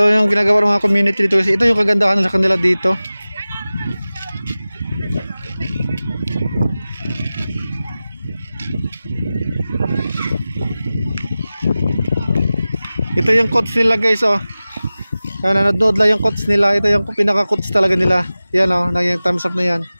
yung ginagawa ng mga community dito kasi ito yung kagandahan sa kanila dito. Ito yung coach nila guys oh. Nanonood lang yung coach nila. Ito yung pinaka-coach talaga nila. Yan oh, yung thumbs up na yan.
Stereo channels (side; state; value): both; inverted; correlation -0.97